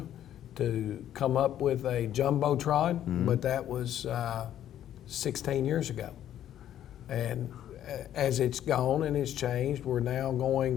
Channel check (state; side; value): quieter; right; 11.2 dB